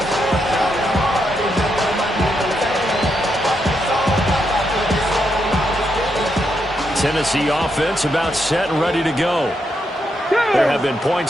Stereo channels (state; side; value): normal; both; correlation 0.81